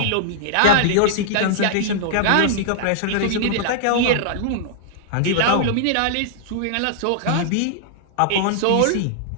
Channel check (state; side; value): different; both; correlation -0.01